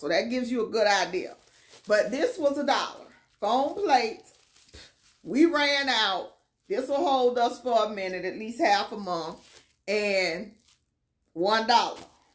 that gives you a good idea. But this was $1. Foam plates. We ran out. This will hold us for a minute, at least half a month. And $1.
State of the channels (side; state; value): both; identical; correlation 1.00